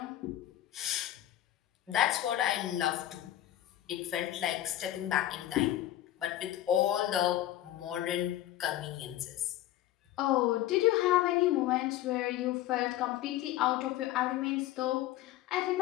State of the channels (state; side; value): quieter; right; 13.5 dB